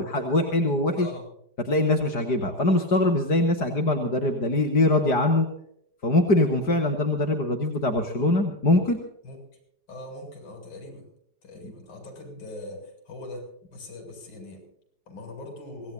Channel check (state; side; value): late; right; 5.0 ms